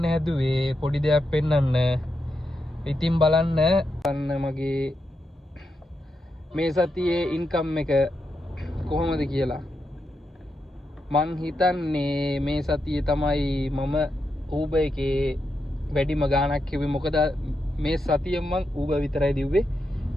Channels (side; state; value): both; normal; correlation 0.85